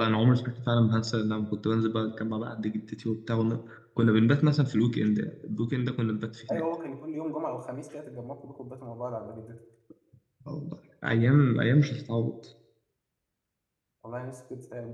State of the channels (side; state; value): both; identical; correlation 1.00